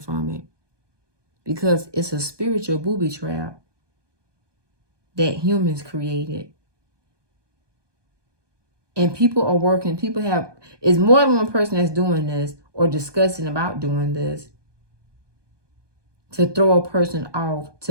from it, because it's a spiritual booby trap that humans created. And people are working, it's more than one person that's doing this or discussing about doing this. to throw a person off,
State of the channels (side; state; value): left; late; 1.2 ms